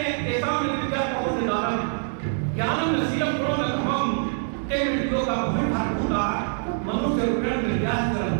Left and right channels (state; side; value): silent; left; digital silence